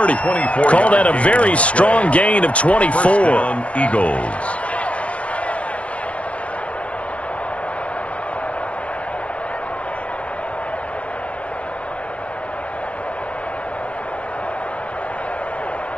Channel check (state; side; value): late; right; 0.063 ms